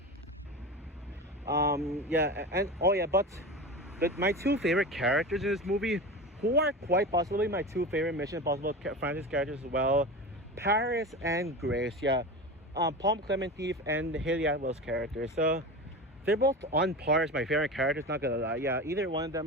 and oh yeah, but my two favorite characters in this movie, who are quite possibly my two favorite Mission Impossible franchise characters as well, Paris and Grace. Yeah, Palm Clemente and Haley Atwell's characters. So they're both on par as my favorite characters. Not gonna lie. Yeah, either one of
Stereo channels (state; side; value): normal; both; correlation 0.27